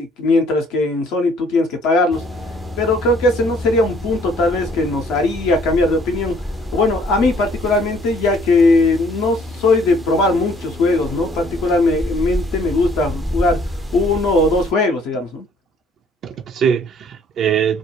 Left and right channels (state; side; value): normal; both; correlation 0.61